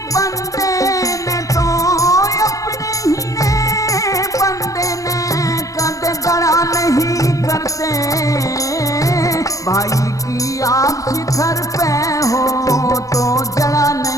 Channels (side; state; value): right; late; 0.16 ms